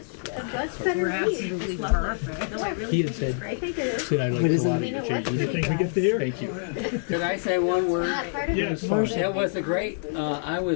better We're read. absolutely perfect. No, I really He think had said, it's great. I think it is. said I liked a lot of your You changes. think we get there? Thank you. Could I say one word? Not part of Yes, it. Marcia. It was a great, I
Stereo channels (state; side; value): silent; right; digital silence